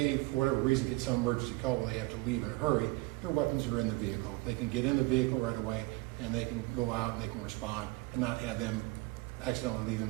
for whatever reason, get some emergency call where they have to leave in a hurry, their weapons are in the vehicle. They can get in the vehicle right away, and they can go out and they can respond and not have them accidentally leave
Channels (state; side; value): quieter; left; 22.1 dB